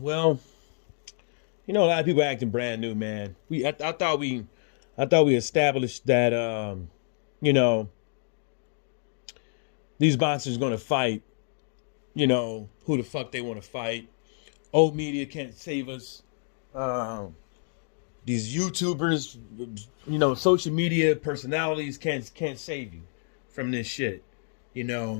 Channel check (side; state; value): right; silent; digital silence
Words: a lot of people acting brand new, man. I thought we established that you know, these monsters going to fight. Who the fuck they want to fight. Old media can't save us. Um, these YouTubers, social media personalities can't save you from this shit. You